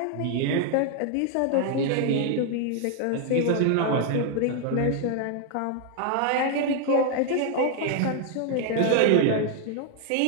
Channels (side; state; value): both; different; correlation 0.00